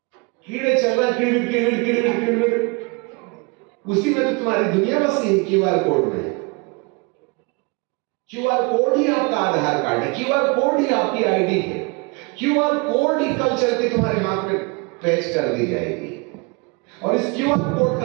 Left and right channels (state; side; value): quieter; left; 30.0 dB